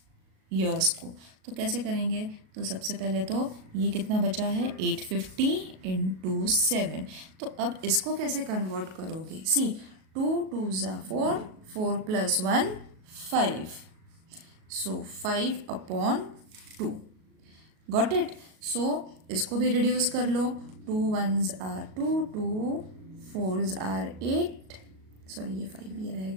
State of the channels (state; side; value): late; left; 37 ms